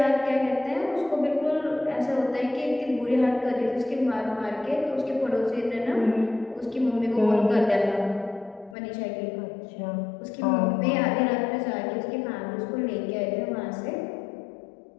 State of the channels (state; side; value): drops out; right; at 8.8 s